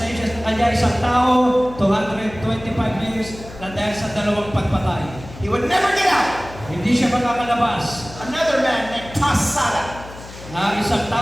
sa kanya isang tao, 225 years na dahil sa dalawang pagpatay. He would never get out. Hindi siya makakalabas. Another man named Tassada, Na isang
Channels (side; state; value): left; noise; hum, 16 dB below the sound